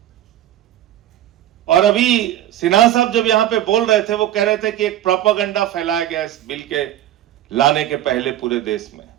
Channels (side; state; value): left; quieter; 12.7 dB